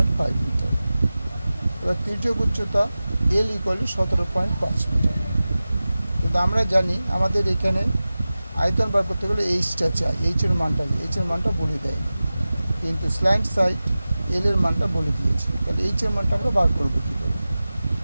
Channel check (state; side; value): inverted; both; correlation -0.96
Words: মিটার। এবার তির্যক উচ্চতা l = 17.5 মিটার। কিন্তু আমরা জানি আমাদের এখানে আয়তন বার করতে গেলে এইচটা চাই, এইচের মানটা বলে দেয়নি, কিন্তু স্ল্যান্ট সাইড এল এর মানটা বলে দিয়েছে। তাহলে এইচের মানটা আমরা বার করবো কী করে?